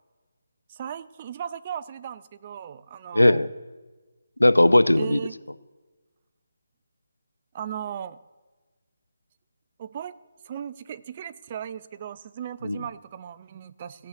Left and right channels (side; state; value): both; inverted; correlation -0.96